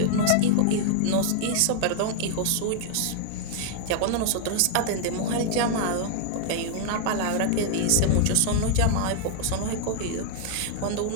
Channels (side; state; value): both; different; correlation 0.00